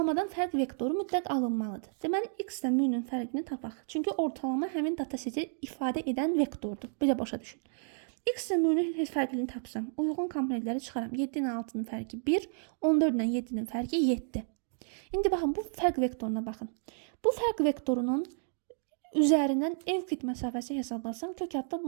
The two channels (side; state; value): left; silent; digital silence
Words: fərq vektoru mütləq alınmalıdır. Deməli, x ilə m-nin fərqini tapaq. Çünki ortalama həmin dataseti ifadə edən vektordur. Belə başa düşün. X ilə m-nin fərqini tapsam, uyğun komponentləri çıxaram. 7 ilə 6-nın fərqi 1, 14 ilə 7-nin fərqi 7. İndi baxın, bu fərq vektoruna baxın. Bu fərq vektorunun üzərindən Evklid məsafəsi hesablasam, kök adda